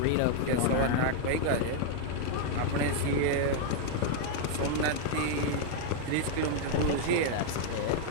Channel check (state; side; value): different; both; correlation 0.00